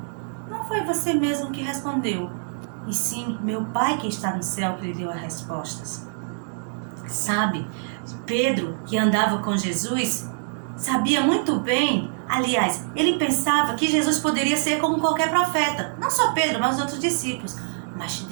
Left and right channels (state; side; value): silent; left; digital silence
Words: não foi você mesmo que respondeu, e sim meu Pai que está no céu que lhe deu as respostas. Sabe, Pedro, que andava com Jesus, sabia muito bem, aliás, ele pensava que Jesus poderia ser como qualquer profeta, não só Pedro, mas os outros discípulos. Mas